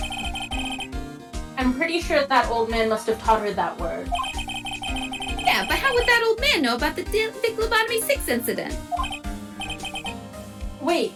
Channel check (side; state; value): both; identical; correlation 1.00